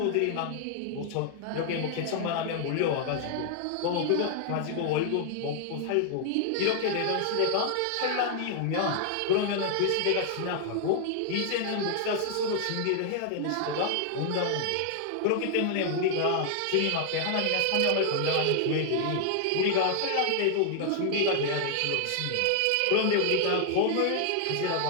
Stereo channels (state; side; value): different; both; correlation 0.00